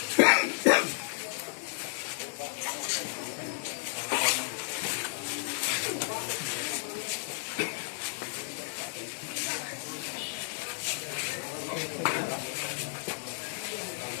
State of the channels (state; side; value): silent; right; digital silence